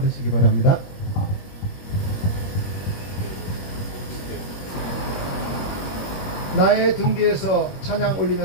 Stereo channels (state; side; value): late; right; 21 ms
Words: 바랍니다. 나의 등 뒤에서 찬양